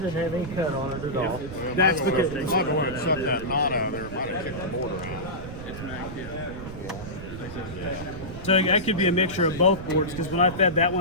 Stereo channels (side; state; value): right; noise; rumble, 11 dB below the sound